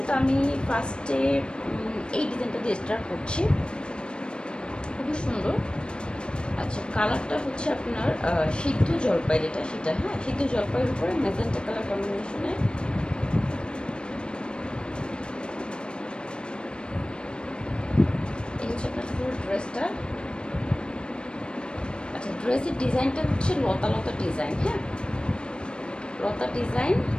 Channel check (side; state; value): right; late; 0.054 ms